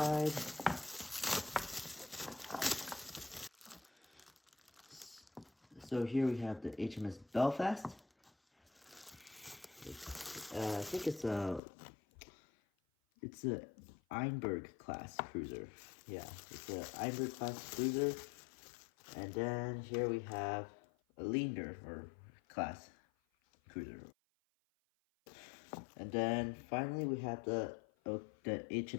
So here we have the HMS Belfast. I think it's a Einberg class cruiser. Yeah, it's a Einberg class cruiser. And then here we have a Leander or class cruiser. And then finally we have the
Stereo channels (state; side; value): drops out; right; at 11.6 s